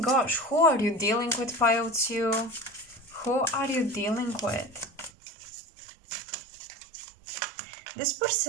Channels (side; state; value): left; drops out; at 5.1 s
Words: who are you dealing with, pile two? Who are you dealing with? This